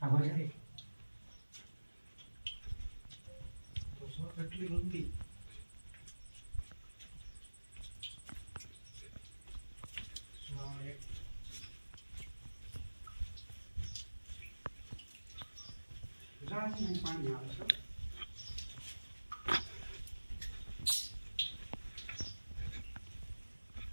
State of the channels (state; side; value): inverted; both; correlation -1.00